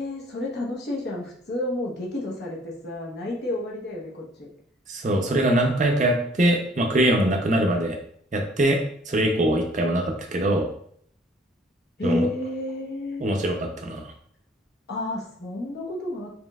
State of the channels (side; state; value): both; normal; correlation 0.58